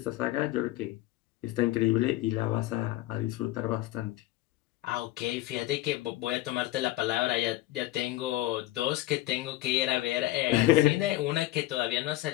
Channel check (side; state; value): right; quieter; 16.4 dB